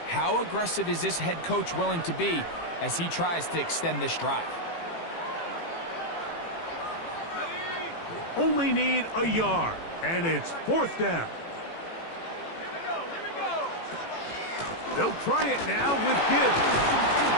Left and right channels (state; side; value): late; right; 18 ms